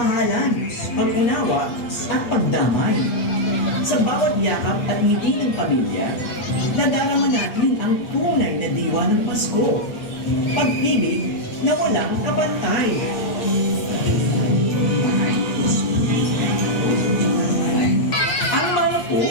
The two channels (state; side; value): late; right; 8.3 ms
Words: pag-unawa at pagdamay. Sa bawat yakap at ngiti ng pamilya, nadarama natin ang tunay na diwa ng Pasko. Pag-ibig na walang kapantay. Ang malako